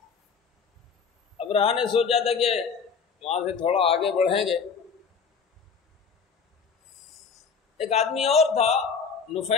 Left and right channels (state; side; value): quieter; right; 5.8 dB